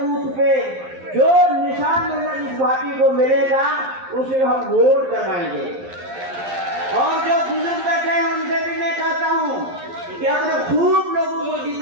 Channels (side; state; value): left; late; 11 ms